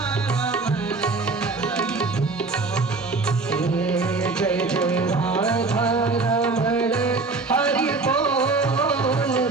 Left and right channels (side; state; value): left; quieter; 3.8 dB